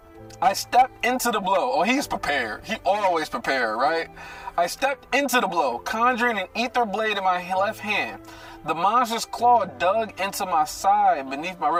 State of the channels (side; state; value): both; identical; correlation 1.00